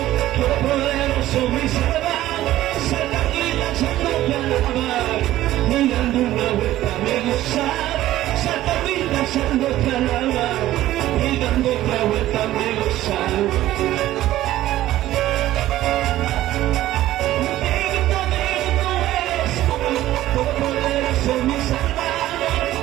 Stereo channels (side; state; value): left; quieter; 14.6 dB